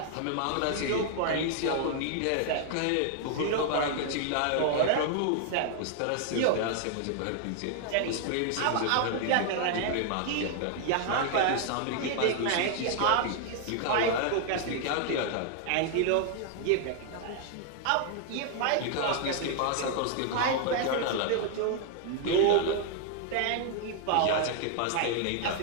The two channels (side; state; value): both; different; correlation 0.00